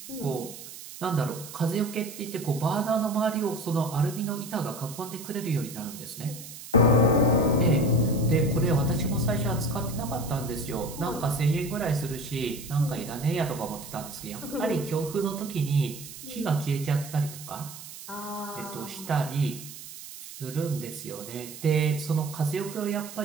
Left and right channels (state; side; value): noise; right; hiss, 13 dB below the sound